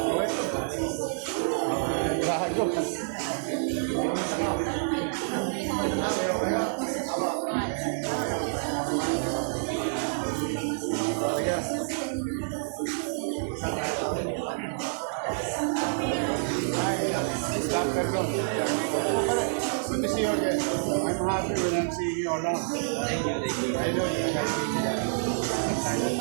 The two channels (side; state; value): left; silent; digital silence